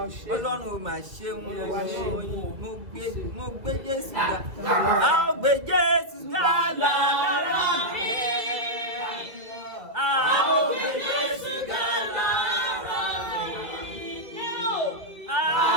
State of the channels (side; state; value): left; late; 1.9 ms